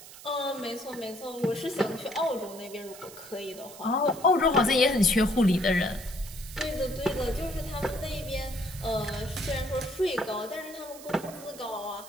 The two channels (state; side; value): noise; right; hiss, 16 dB below the sound